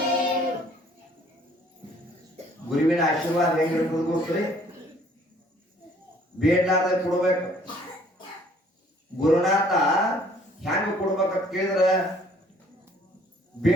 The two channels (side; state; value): both; normal; correlation 0.59